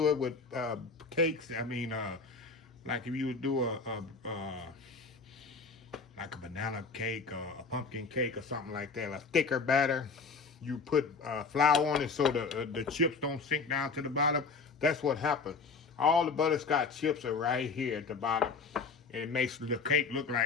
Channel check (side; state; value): right; quieter; 4.6 dB